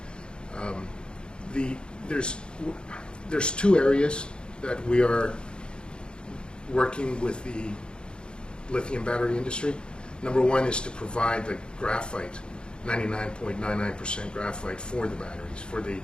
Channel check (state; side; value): late; right; 0.052 ms